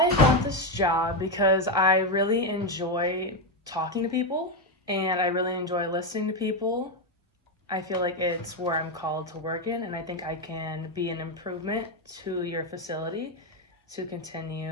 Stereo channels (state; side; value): normal; both; correlation 0.07